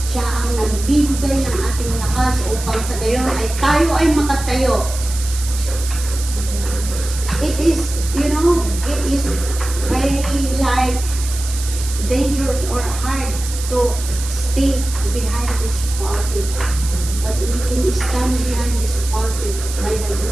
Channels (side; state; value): right; noise; hiss, 10 dB below the sound